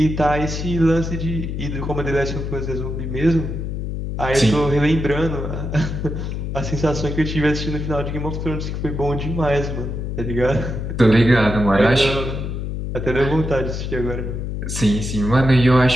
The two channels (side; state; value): left; noise; hum, 4 dB below the sound